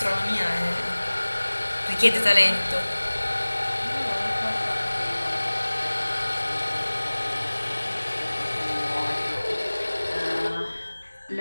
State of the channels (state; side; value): inverted; both; correlation -1.00